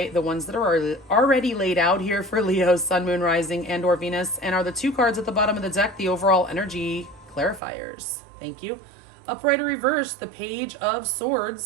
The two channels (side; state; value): left; drops out; at 7.6 s